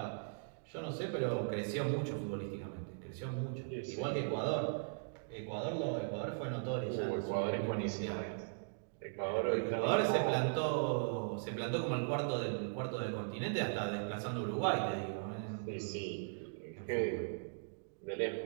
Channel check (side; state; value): left; silent; digital silence